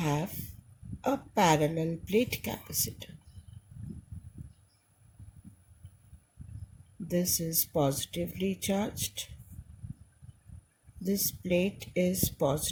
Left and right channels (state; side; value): identical; both; correlation 1.00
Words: a parallel plate capacitor. This is positively charged. This plate is